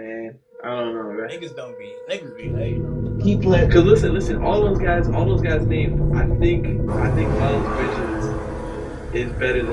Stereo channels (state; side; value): identical; both; correlation 1.00